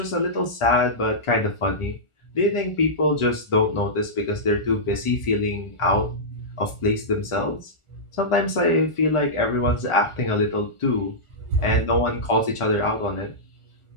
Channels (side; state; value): right; late; 1.4 ms